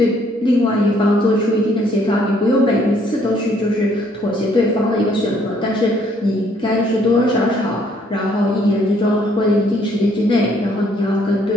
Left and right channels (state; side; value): normal; both; correlation 0.65